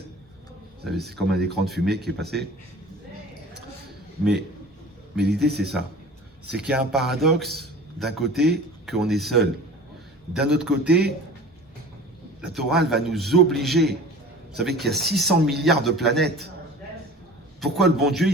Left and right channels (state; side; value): normal; both; correlation 0.41